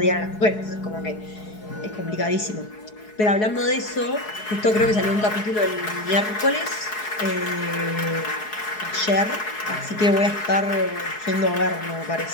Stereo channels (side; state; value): right; late; 4.7 ms